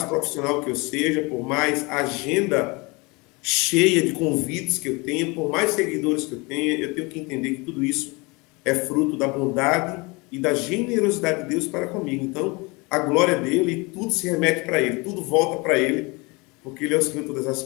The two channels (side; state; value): right; quieter; 26.8 dB